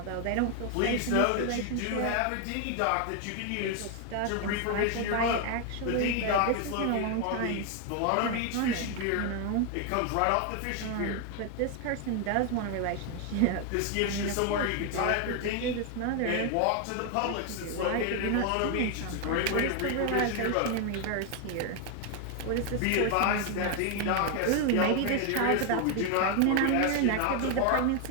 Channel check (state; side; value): different; both; correlation 0.01